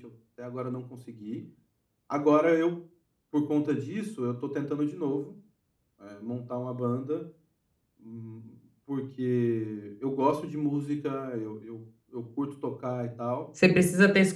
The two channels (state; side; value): identical; both; correlation 1.00